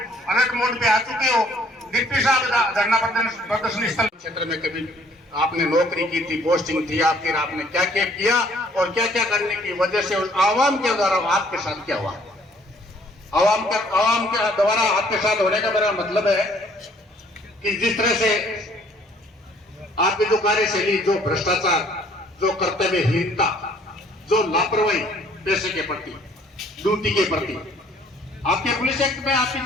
अलर्ट मोड पे आ चुके हो। डिप्टी साहब धरना प्रदर्शन स्थल क्षेत्र में कभी आपने नौकरी की थी, पोस्टिंग थी आपकी, आपने क्या क्या किया और क्या क्या करने की वजह से उस आवाम के द्वारा आपके साथ क्या हुआ? आवाम के द्वारा आपके साथ होने का मेरा मतलब है कि जिस तरह से आपकी जो कार्यशैली, जो भ्रष्टाचार, जो कर्तव्यहीनता, जो लापरवाही पैसे के प्रति, ड्यूटी के प्रति, आपके पुलिस एक्ट में आपकी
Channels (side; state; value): both; normal; correlation 0.60